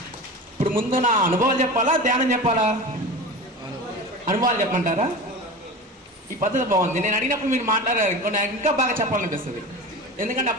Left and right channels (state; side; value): normal; both; correlation 0.30